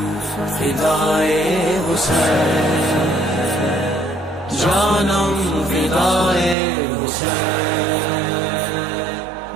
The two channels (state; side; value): drops out; left; at 6.6 s